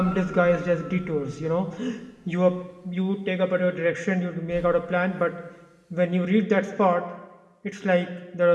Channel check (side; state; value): both; identical; correlation 1.00